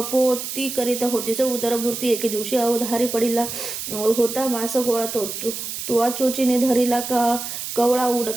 करीता होतीस उदरभूर्ती. एके दिवशी अवधारी पडिला होता मास गोळा तुवा चोचीने धरिला का कवळा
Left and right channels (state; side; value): noise; right; hiss, 6 dB below the sound